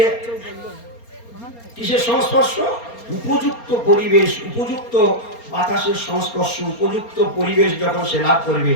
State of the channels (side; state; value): right; late; 4.3 ms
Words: কিসের সংস্পর্শ? উপযুক্ত পরিবেশ, উপযুক্ত বাতাসের সংস্পর্শ, উপযুক্ত পরিবেশ যখন সে লাভ করবে,